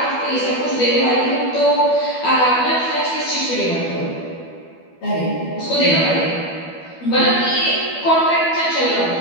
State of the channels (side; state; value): right; late; 12 ms